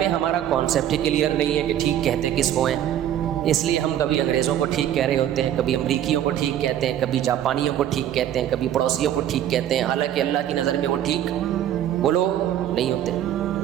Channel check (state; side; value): quieter; left; 11.2 dB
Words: ہمارا کانسیپٹ ہی کلیئر نہیں ہے کہ ٹھیک کہتے کس کو ہیں, اس لیے ہم کبھی انگریزوں کو ٹھیک کہہ رہے ہوتے ہیں, کبھی امریکیوں کو ٹھیک کہتے ہیں, کبھی جاپانیوں کو ٹھیک کہتے ہیں, کبھی پڑوسیوں کو ٹھیک کہتے ہیں, حالانکہ اللہ کی نظر میں وہ ٹھیک بولو نہیں ہوتے.